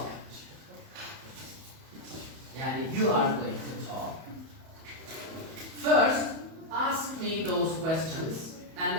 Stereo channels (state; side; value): late; left; 31 ms